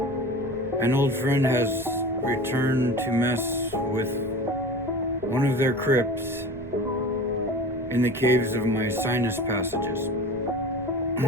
an old friend has returned to mess with one of their crypts in the caves of my sinus passages.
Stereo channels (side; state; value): right; noise; rumble, 18 dB below the sound